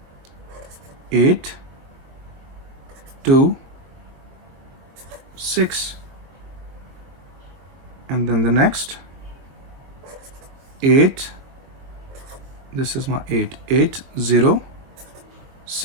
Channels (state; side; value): late; left; 22 ms